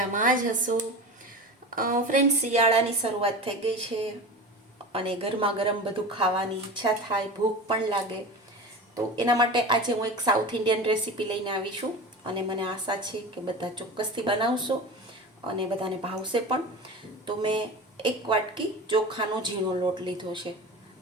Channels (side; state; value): both; normal; correlation 0.30